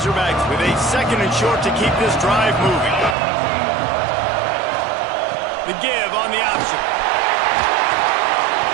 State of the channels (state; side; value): drops out; left; at 3.2 s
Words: with a 2nd and short to keep this drive moving. The give on the option.